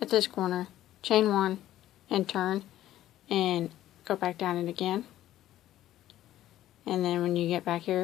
this corner, chain one, and turn, and go back down it again. And then when you get back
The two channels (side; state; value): right; quieter; 13.4 dB